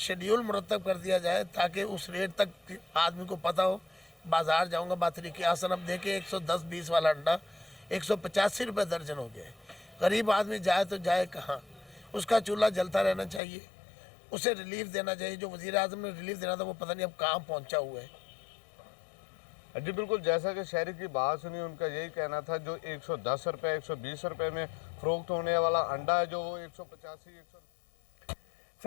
مرتب کر دیا جائے تاکہ اس ریٹ تک آدمی کو پتہ ہو۔ بازار جاؤں گا بطریقِ آسن، اب دیکھیں 110-20 والا انڈا 185 روپے درجن ہو گیا ہے۔ غریب آدمی جائے تو جائے کہاں؟ اس کا چولہا جلتا رہنا چاہیے، اسے ریلیف دینا چاہیے۔ جو وزیر اعظم نے ریلیف دینا تھا وہ پتہ نہیں اب کہاں پہنچا ہوا ہے۔ جی بالکل، جیسا کہ شہری کی بات سنی، ان کا یہی کہنا تھا جو 110 روپے 120 روپے میں فروخت ہونے والا انڈا ہے جو وہ 185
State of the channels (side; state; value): right; drops out; at 13.4 s